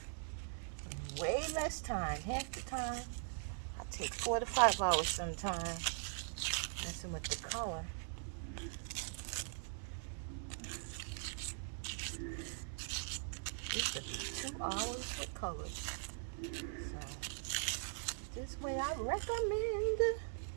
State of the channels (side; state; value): left; silent; digital silence